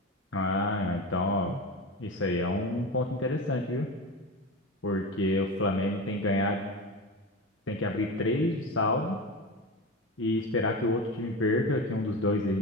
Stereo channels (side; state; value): both; normal; correlation 0.25